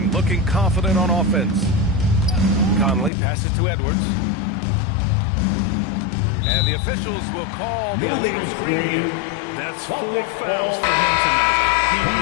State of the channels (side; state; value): right; drops out; at 3.1 s